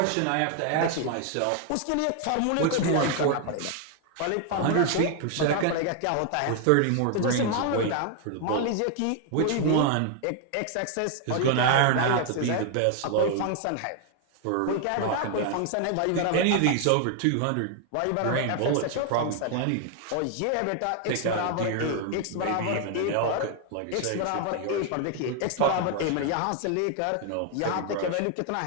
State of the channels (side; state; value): both; different; correlation 0.00